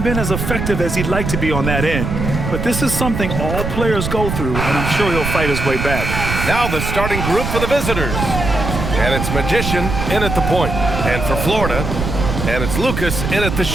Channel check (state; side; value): noise; right; rumble, 3 dB below the sound